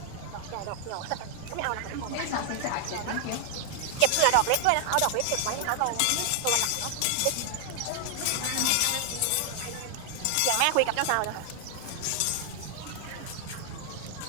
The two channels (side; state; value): both; different; correlation 0.00